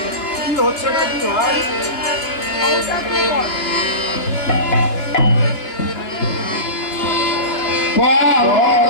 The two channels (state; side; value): late; right; 2.8 ms